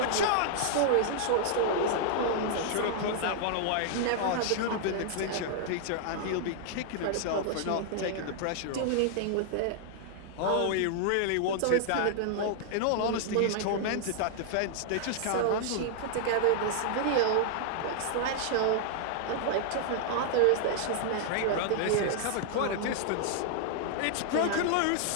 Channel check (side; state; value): both; different; correlation -0.01